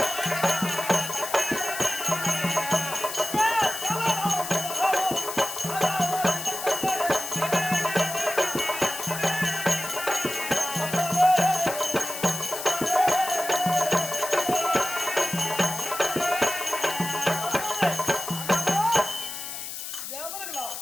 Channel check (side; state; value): left; noise; hiss, 7 dB below the sound